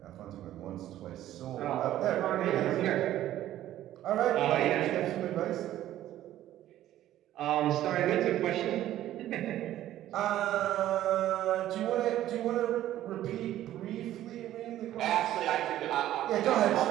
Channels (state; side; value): quieter; left; 13.2 dB